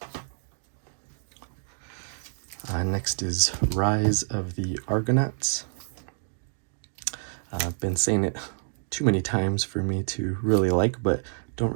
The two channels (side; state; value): left; silent; digital silence